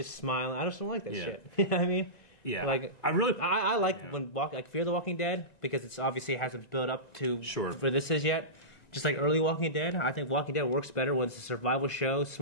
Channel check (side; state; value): right; late; 1.9 ms